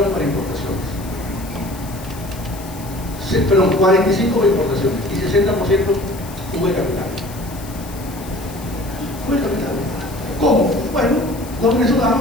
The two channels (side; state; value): left; noise; hiss, 17 dB below the sound